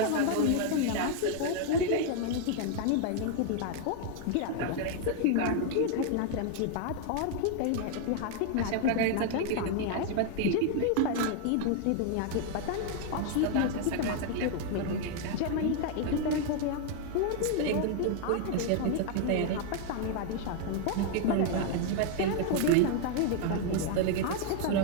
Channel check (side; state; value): both; different; correlation 0.00